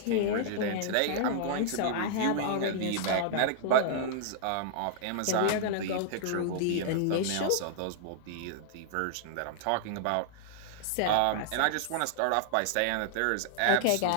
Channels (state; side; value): different; both; correlation -0.01